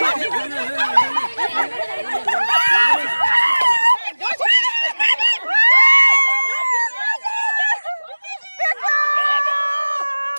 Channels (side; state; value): both; inverted; correlation -1.00